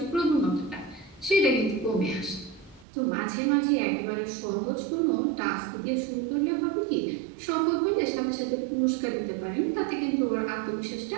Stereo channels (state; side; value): drops out; left; at 2.9 s